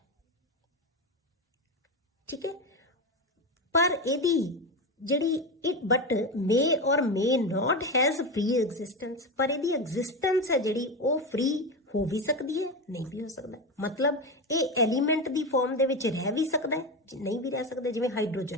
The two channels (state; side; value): normal; both; correlation 0.17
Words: ਠੀਕ ਹੈ, ਪਰ ਇਹਦੀ ਜਿਹੜੀ ਬਟ ਮੇ ਔਰ ਮੇ ਨਾਟ ਹੈਜ਼ ਫ੍ਰੀ ਐਗਜ਼ਿਸਟੈਂਸ, ਪਰ ਇਹਦੀ ਐਗਜ਼ਿਸਟੈਂਸ ਹੈ ਜਿਹੜੀ ਉਹ ਫ੍ਰੀ ਹੋ ਵੀ ਸਕਦੀ ਹੈ, ਨਹੀਂ ਵੀ ਹੋ ਸਕਦਾ। ਮਤਲਬ ਇਹ ਐਲੀਮੈਂਟ ਦੀ ਫਾਰਮ ਦੇ ਵਿੱਚ ਰਹਿ ਵੀ ਸਕਦਾ ਹੈ, ਨਹੀਂ ਵੀ ਰਹਿ ਸਕਦਾ। ਜਿਵੇਂ